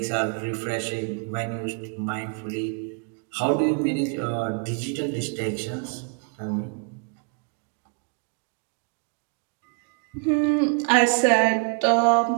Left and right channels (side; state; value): left; quieter; 38.5 dB